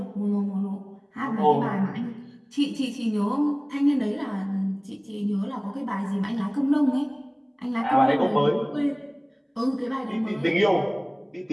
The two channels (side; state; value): both; identical; correlation 1.00